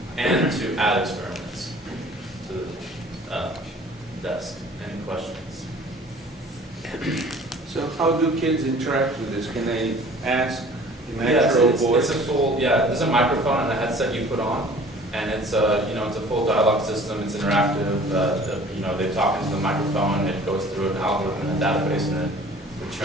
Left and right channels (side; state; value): both; normal; correlation 0.49